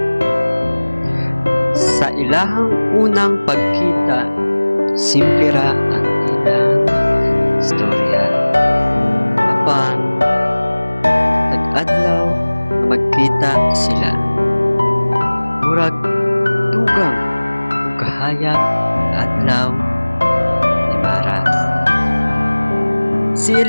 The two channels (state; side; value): inverted; both; correlation -1.00